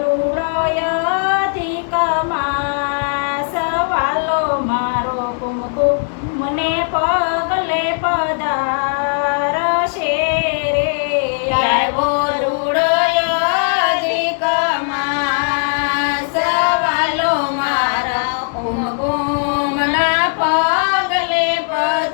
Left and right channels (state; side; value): silent; right; digital silence